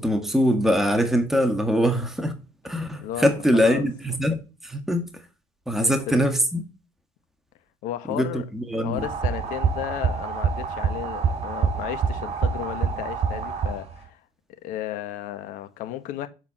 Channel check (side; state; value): both; normal; correlation 0.69